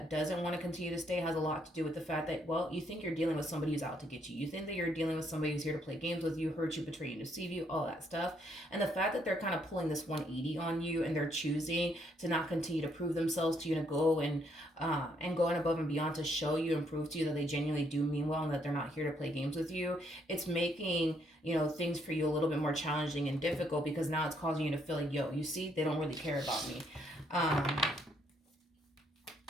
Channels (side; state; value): both; normal; correlation 0.71